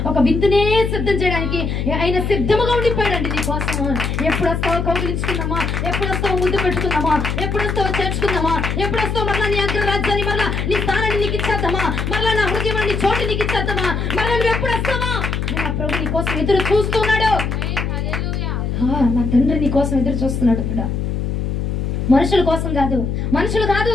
ఒక విందునే సిద్ధం చేయడానికి ఆయన సిద్ధముగా ఉండిపోయాడండి నీ కోసం. ఎప్పుడు వస్తావో కౌగిలించుకుందామా? ఎప్పుడు వస్తావో ముద్దు పెట్టుకుందామా? ఎప్పుడు వస్తావో చేర్చుకుందామా? ఎప్పుడు వస్తావో మరలా నీ అగ్రరాజ్యాన్ని, మరలా నీ స్థానాన్ని నీకు ఇచ్చేద్దామా? మరలా నా హృదయాన్ని చోటు నీకు ఇచ్చేద్దామా? మరలా నువ్వు ఎప్పుడు వస్తావా? నా ప్రభు నీ కోసం ఎదురు చూస్తున్నాడు. నా తండ్రి నీ కోసం ఎదురు చూస్తున్నాడు కూడా. మనుషుల కోసం కాదు, మనుషులు కాదు,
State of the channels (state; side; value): noise; left; hum, 1 dB below the sound